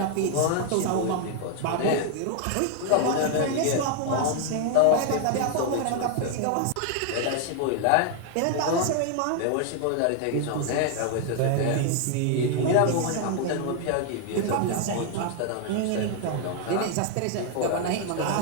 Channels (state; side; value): different; both; correlation 0.00